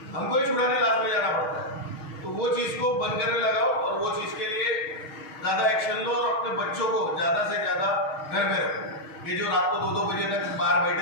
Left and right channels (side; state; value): right; late; 6.4 ms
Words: हमको ही छुड़ाने लास्ट में जाना पड़ता है। तो वो चीज़ को बंद करने लगाओ और वो चीज़ के लिए ज़्यादा एक्शन लो और अपने बच्चों को ज़्यादा से ज़्यादा घर में रखो। ये जो रात को 2-2 बजे तक बाहर